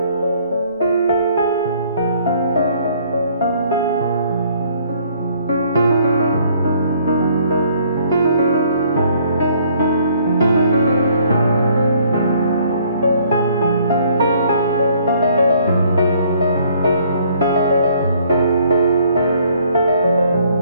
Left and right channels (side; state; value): both; inverted; correlation -0.62